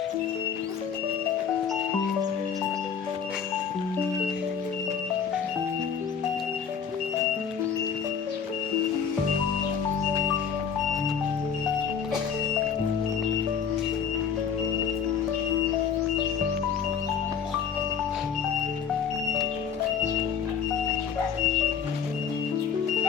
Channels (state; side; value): quieter; right; 7.0 dB